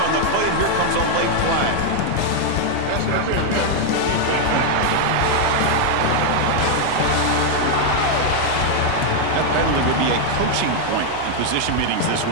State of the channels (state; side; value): different; both; correlation 0.00